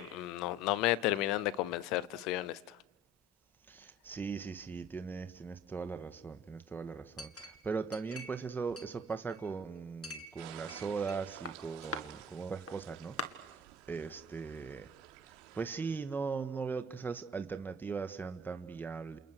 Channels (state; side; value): normal; both; correlation 0.47